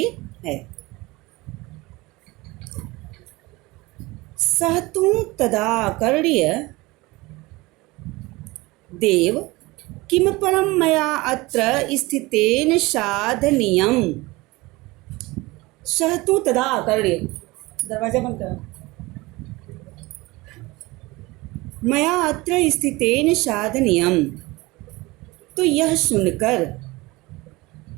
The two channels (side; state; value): left; quieter; 21.8 dB